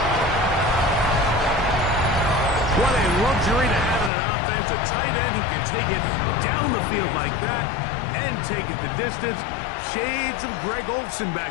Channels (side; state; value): right; drops out; at 4.1 s